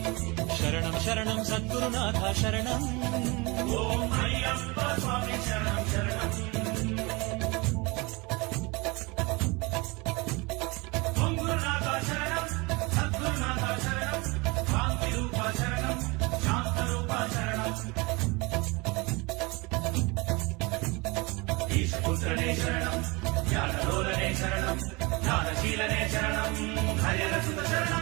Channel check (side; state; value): left; quieter; 26.1 dB